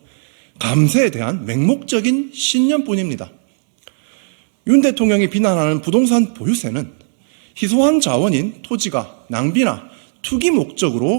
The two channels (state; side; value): silent; left; digital silence